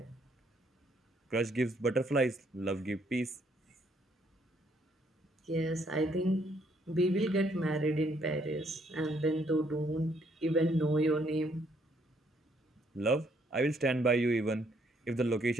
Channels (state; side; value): normal; both; correlation 0.69